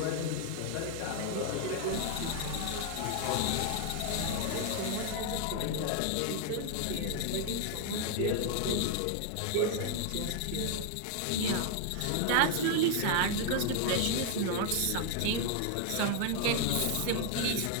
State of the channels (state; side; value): different; both; correlation 0.00